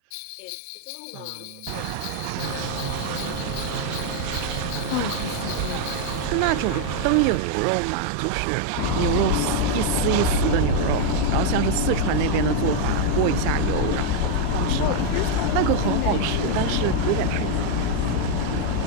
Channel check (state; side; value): different; both; correlation 0.01